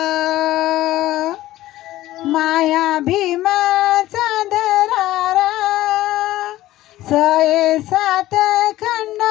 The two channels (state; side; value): quieter; right; 15.5 dB